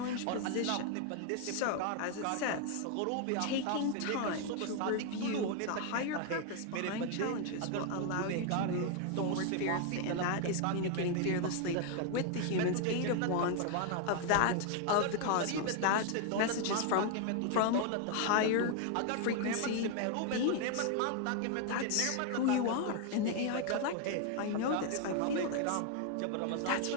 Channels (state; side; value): different; both; correlation 0.00